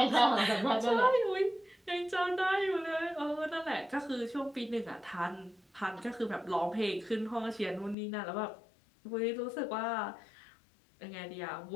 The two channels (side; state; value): right; drops out; at 8.0 s